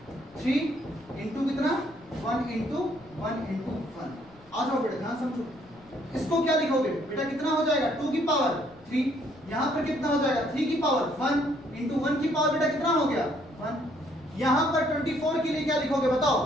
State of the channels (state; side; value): noise; left; rumble, 26 dB below the sound